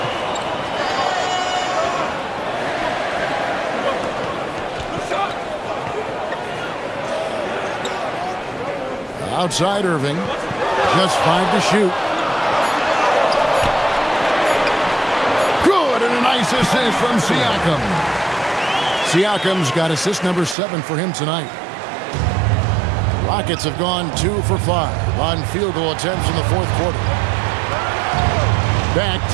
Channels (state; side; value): drops out; left; at 20.6 s